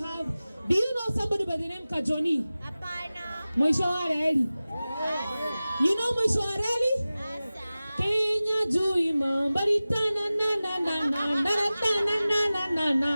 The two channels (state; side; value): inverted; both; correlation -0.97